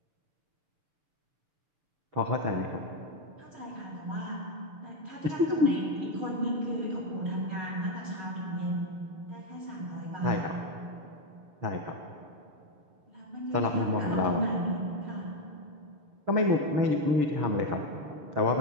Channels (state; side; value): late; left; 6.8 ms